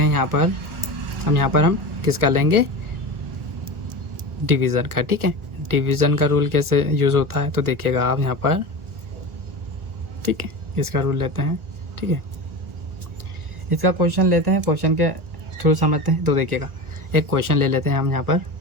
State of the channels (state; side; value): late; left; 1.4 ms